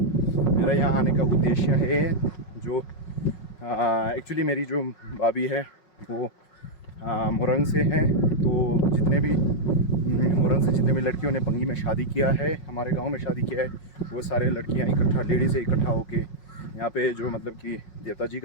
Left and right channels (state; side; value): late; right; 5.5 ms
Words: यहाँ आने का उद्देश्य है जो एक्चुअली मेरी जो भाभी है वो मुरंग से है। तो मुरंग से जितने भी लड़कियों ने पंगी में शादी किया है, हमारे गांव में शादी किया है, वो सारे लड़कियां इकट्ठा लेडीज़ से इकट्ठा होके यहाँ पे जो मतलब कि देवता जी